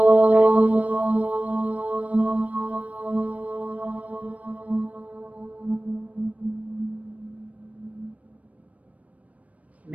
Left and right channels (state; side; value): late; left; 0.068 ms